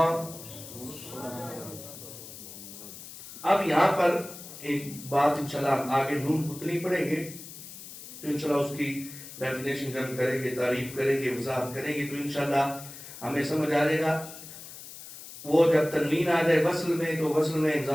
اب یہاں پر ایک بات انشاءاللہ آگے نون کتنی پڑھیں گے تو انشاءاللہ اس کی ڈیفینیشن جب کریں گے, تعریف کریں گے, وضاحت کریں گے, تو انشاءاللہ ہمیں سمجھ آ جائے گا. وہ جب تنوین آ جائے وصل میں, تو وصل میں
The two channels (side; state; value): left; noise; hiss, 14 dB below the sound